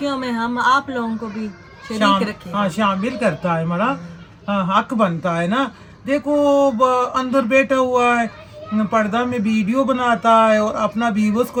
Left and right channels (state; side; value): identical; both; correlation 1.00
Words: में हम आप लोगों को भी शरीक रखेंगे। हाँ शामिल करता है, हमारा हाँ हक बनता है ना। देखो अंदर बैठा हुआ है, पर्दा में वीडियो बनाता है और अपना व्यूअर्स